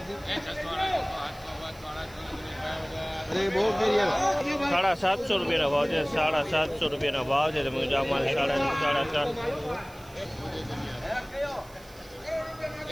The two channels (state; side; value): noise; right; hiss, 23 dB below the sound